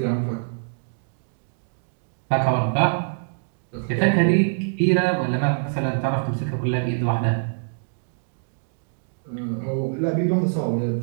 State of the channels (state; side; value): silent; left; digital silence